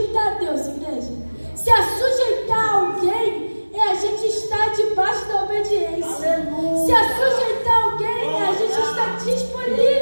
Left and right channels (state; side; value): inverted; both; correlation -1.00